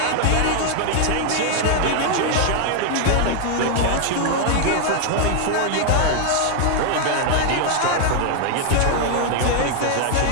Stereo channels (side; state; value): both; different; correlation 0.00